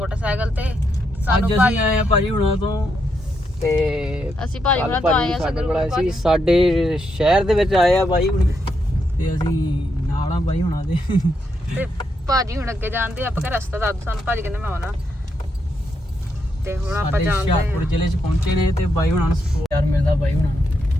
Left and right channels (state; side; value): normal; both; correlation 0.80